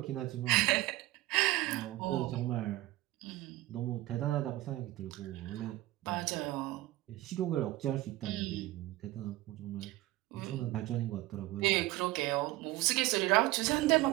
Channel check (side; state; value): left; quieter; 17.5 dB